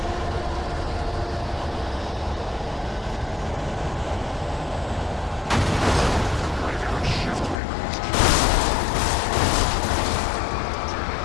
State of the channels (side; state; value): right; drops out; at 7.6 s